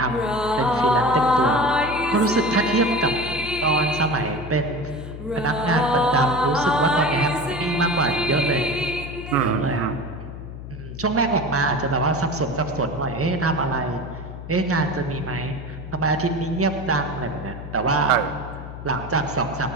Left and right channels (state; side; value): noise; left; hum, 11 dB below the sound